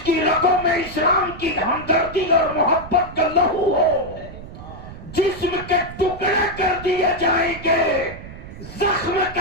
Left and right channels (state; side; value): noise; right; rumble, 14 dB below the sound